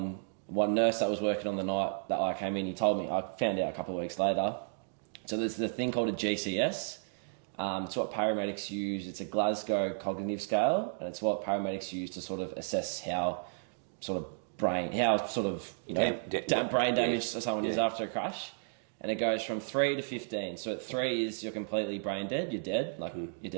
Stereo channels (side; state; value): left; silent; digital silence